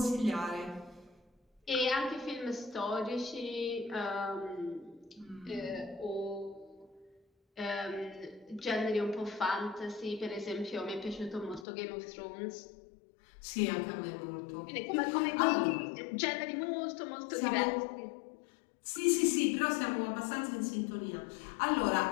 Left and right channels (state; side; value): drops out; right; at 11.7 s